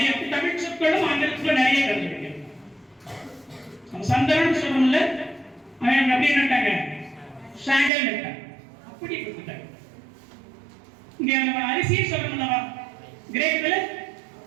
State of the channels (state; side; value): drops out; left; at 7.9 s